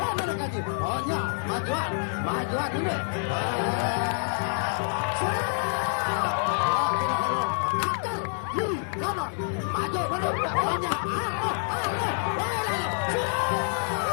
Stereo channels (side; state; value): right; silent; 60 dB below the other